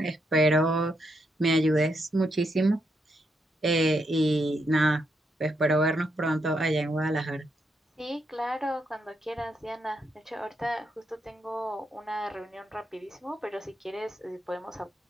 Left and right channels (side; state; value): both; normal; correlation 0.80